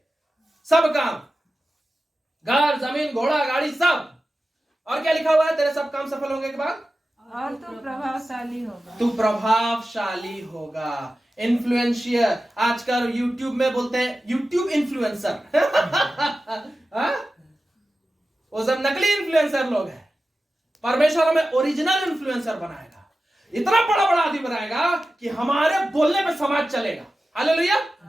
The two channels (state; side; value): normal; both; correlation 0.94